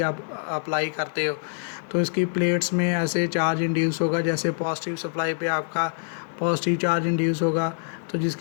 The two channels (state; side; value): silent; right; digital silence